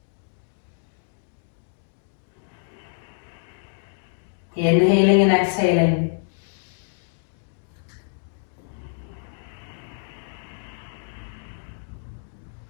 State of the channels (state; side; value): silent; right; digital silence